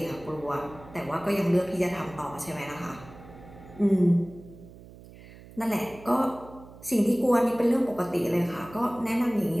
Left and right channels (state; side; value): noise; right; hum, 19 dB below the sound